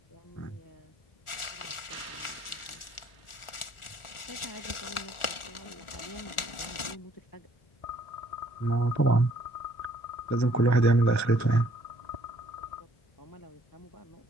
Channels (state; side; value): late; right; 1.4 ms